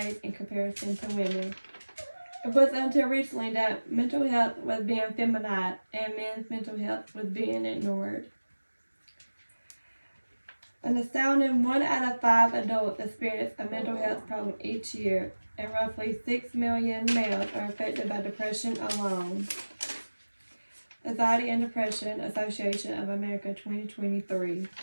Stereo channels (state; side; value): inverted; both; correlation -1.00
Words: in comparison to women. It wasn't until recently that mental health was being feminized and men's mental health was being ignored. An astounding 1 out of 5 adults experience a mental health problem each year, and roughly 6 million males are affected by depression alone. Anxiety and Depression Association of America 2023.